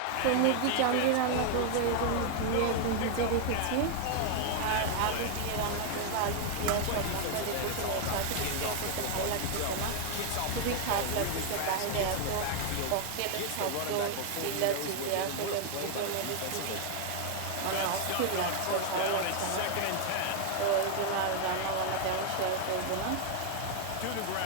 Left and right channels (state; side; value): different; both; correlation 0.00